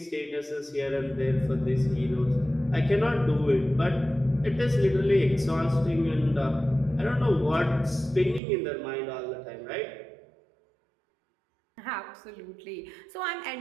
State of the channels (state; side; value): drops out; left; at 8.4 s